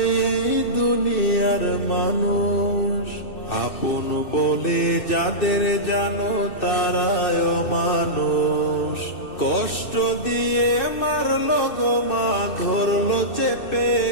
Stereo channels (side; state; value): right; late; 2.6 ms